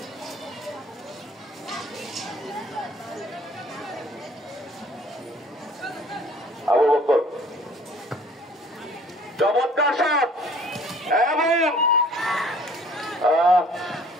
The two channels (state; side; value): normal; both; correlation 0.54